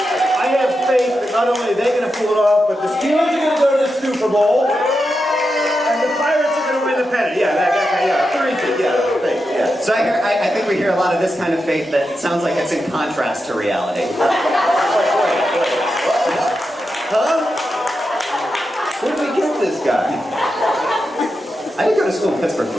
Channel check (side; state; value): both; normal; correlation 0.88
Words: I have faith that not only are they going to pull it off, but the Steelers are going to go to the Super Bowl, and the Pirates are going to win the pennant. Faith, yeah. So I think we hear a lot of this kind of faith that sounds like it's in contrast to reality. Huh? Where did we get this guy? I did go to school in Pittsburgh